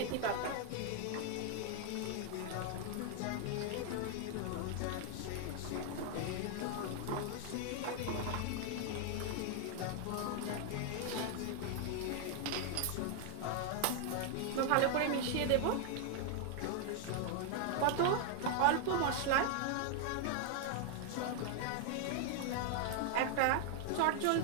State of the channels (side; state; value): both; different; correlation 0.00